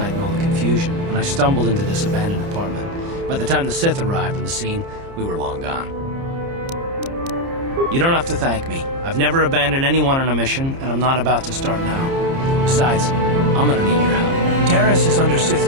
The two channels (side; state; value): left; late; 30 ms